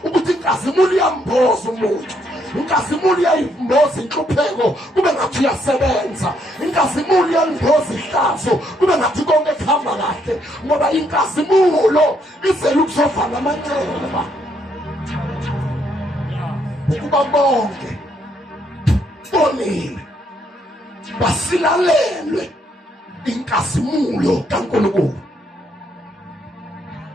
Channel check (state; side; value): normal; both; correlation 0.72